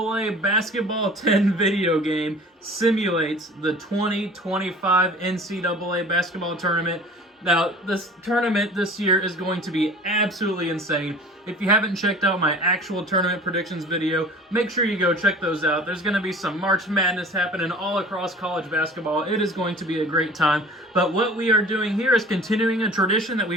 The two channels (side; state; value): both; normal; correlation 0.44